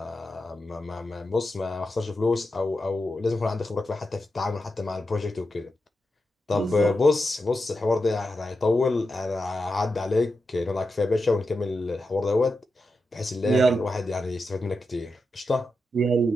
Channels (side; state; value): both; normal; correlation 0.89